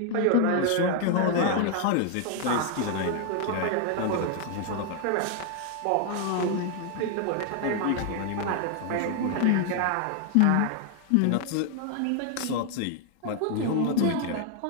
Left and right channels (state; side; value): different; both; correlation 0.00